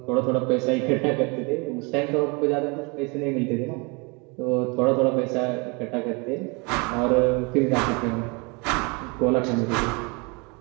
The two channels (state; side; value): quieter; left; 30.0 dB